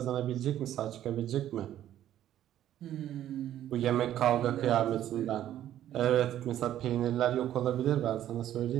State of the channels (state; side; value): quieter; left; 11.9 dB